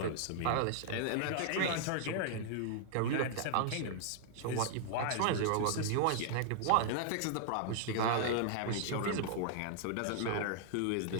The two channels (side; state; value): both; different; correlation -0.01